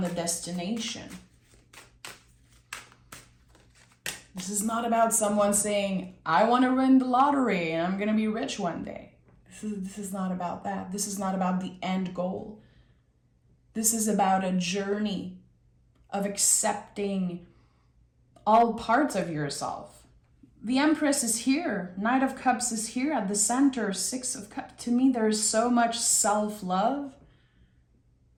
the destination. This is not about someone saying, I want to win the lottery and I'm going to be rich one day. This is not about that. This is not about the end goal. This is about a journey of accepting all parts of yourself. The Empress is here. Knight of Cups is here at the center. 6 of Cups. To me, there's so much self-love,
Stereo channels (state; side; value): identical; both; correlation 1.00